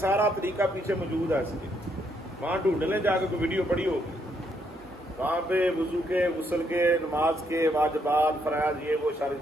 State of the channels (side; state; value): both; normal; correlation 0.74